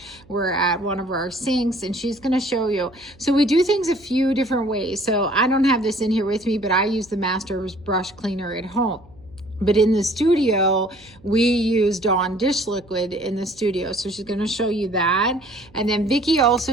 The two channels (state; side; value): noise; right; hum, 27 dB below the sound